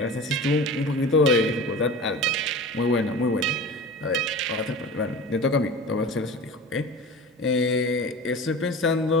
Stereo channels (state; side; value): normal; both; correlation 0.34